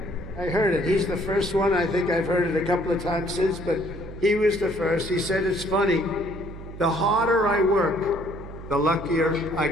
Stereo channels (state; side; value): noise; right; hum, 13 dB below the sound